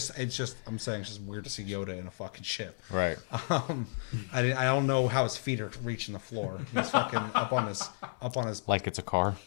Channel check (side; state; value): right; silent; digital silence